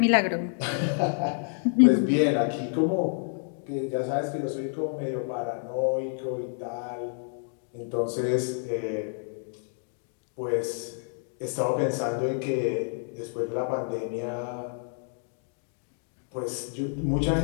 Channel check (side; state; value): right; silent; 59 dB below the other